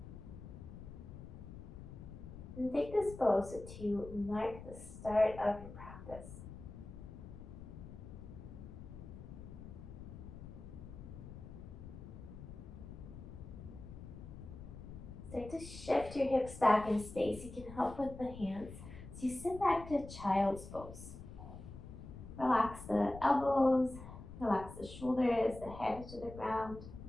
And take this pose to mark the start of your practice. Start to shift your hips back in space. You can help with the hands. So you sit back to child's pose. Relax the elbows, relax the shoulders, the head to the ground.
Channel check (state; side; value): noise; left; rumble, 12 dB below the sound